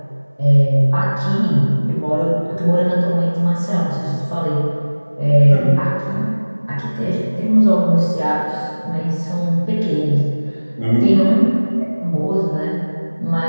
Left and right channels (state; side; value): inverted; both; correlation -1.00